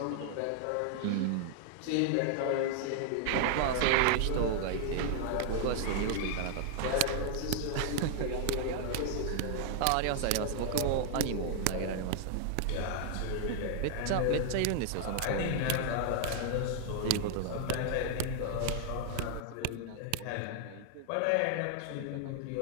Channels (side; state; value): both; different; correlation 0.00